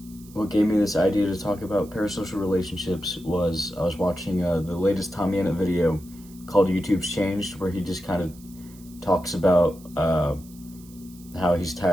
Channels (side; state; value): right; noise; hiss, 23 dB below the sound